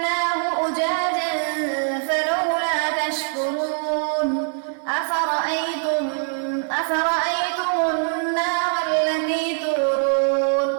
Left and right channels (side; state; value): left; silent; 56 dB below the other